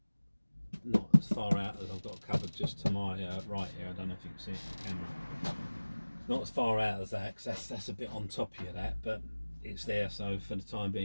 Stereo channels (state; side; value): inverted; both; correlation -1.00